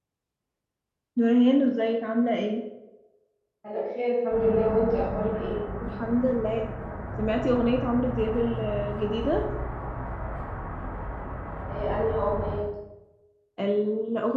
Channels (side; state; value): both; identical; correlation 1.00